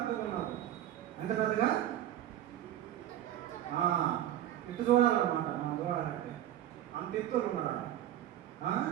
ఉన్నారు. ఎంత పెద్దగా? ఇటు చూడాలన్నమాట. మనం చూడాలంటే అంత ఎత్తులు ఉన్నారా?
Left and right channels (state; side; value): quieter; left; 12.3 dB